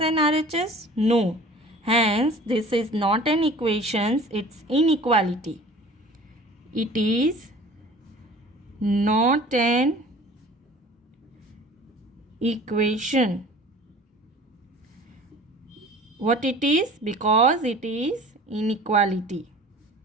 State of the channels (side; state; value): both; normal; correlation 0.45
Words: RHS? No. Hence this is not an equation, it's inequality. It is not an equation. What it is? Because it is inequality.